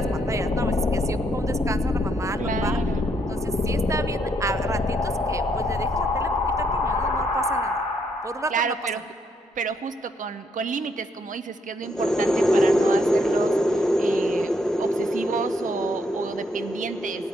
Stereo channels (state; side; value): normal; both; correlation 0.73